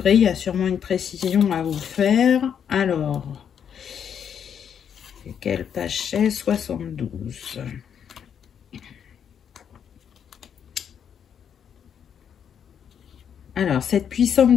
Il y a sûrement une précision à vous faire. Alors, quelle page c'est? 72. Alors, cette puissante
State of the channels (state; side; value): quieter; right; 8.2 dB